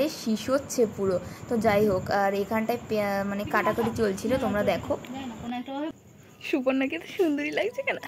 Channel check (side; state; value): both; identical; correlation 1.00